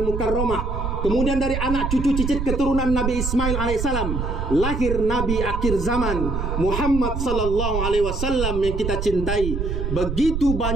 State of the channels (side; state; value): right; noise; rumble, 3 dB below the sound